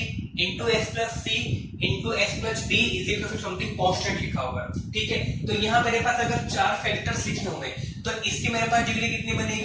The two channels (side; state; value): both; identical; correlation 1.00